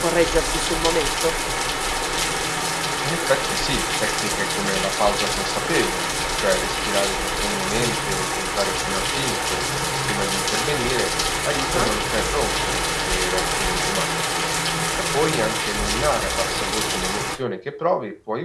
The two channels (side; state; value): both; identical; correlation 1.00